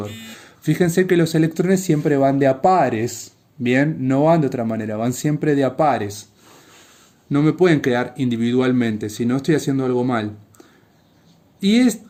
Fíjense que los electrones siempre van de a pares. Bien, no van de otra manera, van siempre de a pares. No me pueden quedar individualmente, si no estoy haciendo algo mal. Y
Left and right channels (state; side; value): identical; both; correlation 1.00